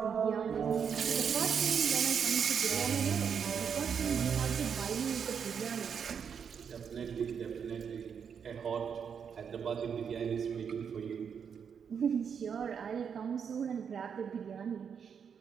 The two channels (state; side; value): quieter; left; 7.1 dB